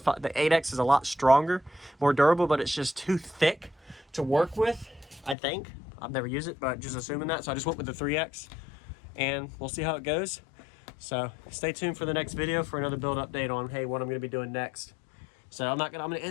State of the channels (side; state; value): right; drops out; at 5.4 s